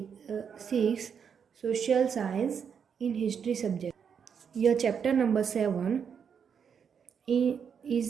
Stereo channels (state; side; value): quieter; left; 7.1 dB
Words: social science in history subject. Your chapter number 7